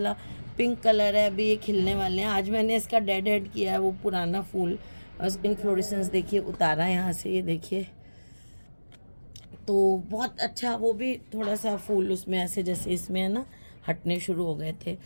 पिंक कलर है, अभी ये खिलने वाले हैं। आज मैंने इसका डेड हेड किया है, वो पुराना फूल इन्फ्लोरेसेंस देखिए उतारा है यहाँ से, ये देखिए। तो बहुत अच्छा, वो भी थोड़ा सा फूल उसमें ऐसे जैसे इसमें है ना, हटने शुरू हो गए थे।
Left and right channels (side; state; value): both; inverted; correlation -1.00